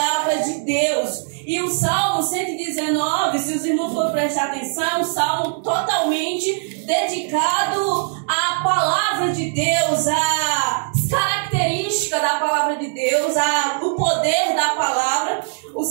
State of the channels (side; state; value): left; silent; digital silence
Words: de Deus. E o Salmo 119, se os irmãos forem prestar atenção, é um salmo totalmente dedicado à palavra de Deus, às características da palavra de Deus, ao poder da palavra. O